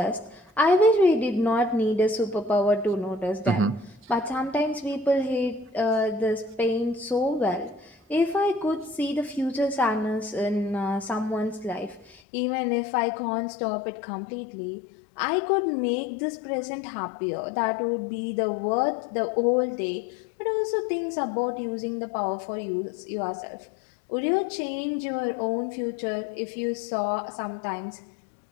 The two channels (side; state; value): right; drops out; at 12.2 s